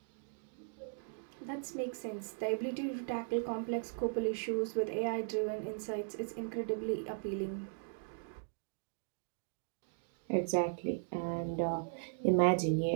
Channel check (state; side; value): silent; left; digital silence